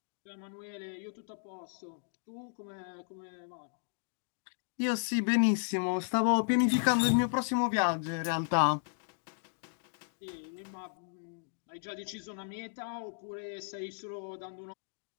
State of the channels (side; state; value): right; silent; digital silence